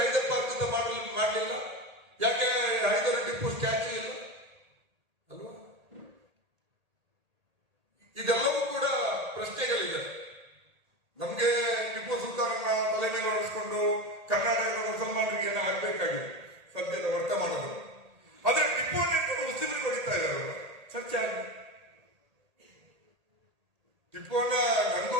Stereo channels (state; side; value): late; left; 1.8 ms